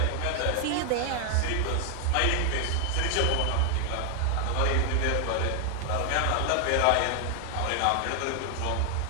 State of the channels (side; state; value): both; different; correlation 0.00